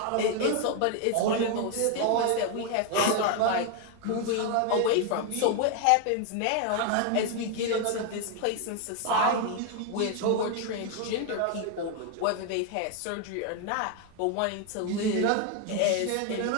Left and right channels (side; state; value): both; different; correlation 0.01